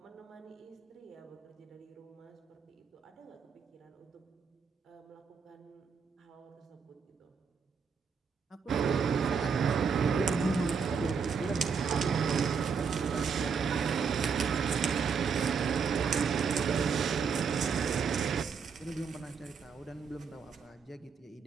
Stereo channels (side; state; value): left; quieter; 5.9 dB